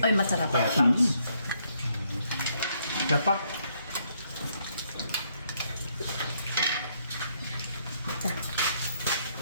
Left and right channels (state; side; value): inverted; both; correlation -0.72